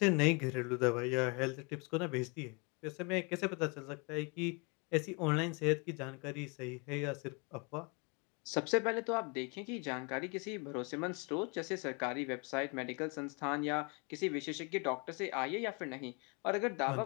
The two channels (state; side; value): quieter; right; 31.7 dB